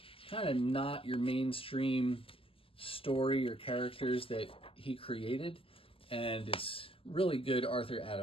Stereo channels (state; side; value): late; right; 0.26 ms